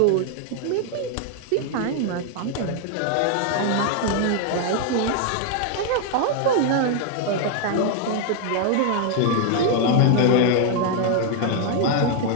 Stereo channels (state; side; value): different; both; correlation 0.00